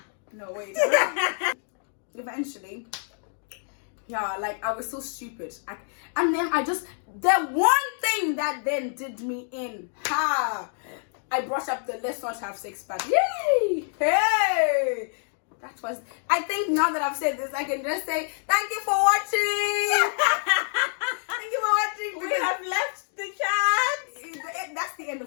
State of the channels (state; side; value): silent; right; 60 dB below the other